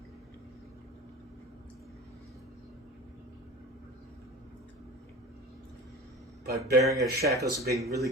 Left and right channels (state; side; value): normal; both; correlation 0.34